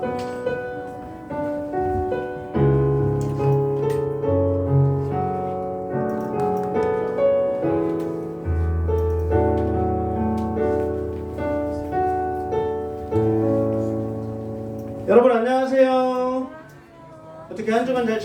여러분 안녕하세요. 어떻게 한 주간 잘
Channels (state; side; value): identical; both; correlation 1.00